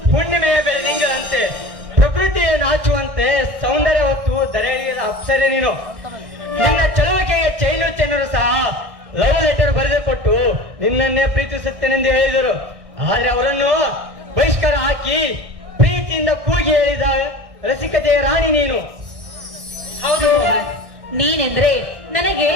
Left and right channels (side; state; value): left; late; 1.6 ms